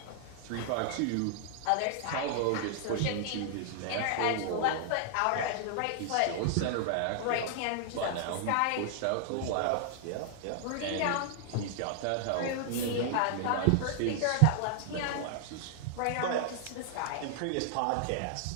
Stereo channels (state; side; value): different; both; correlation -0.01